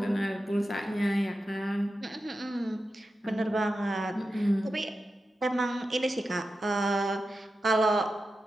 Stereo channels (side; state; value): both; normal; correlation 0.91